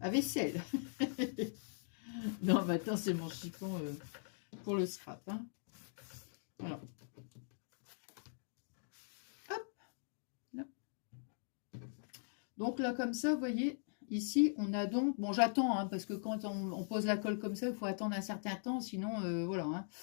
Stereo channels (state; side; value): silent; right; digital silence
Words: vaisselle. Non, maintenant, c'est mon chiffon pour le scrap. Hein. Alors. Donc là, comme ça, vous voyez, ici, on a donc... Bon, j'attends, hein, parce que quand on pose la colle comme ça, il faut attendre un certain temps, sinon, voilà. Hein.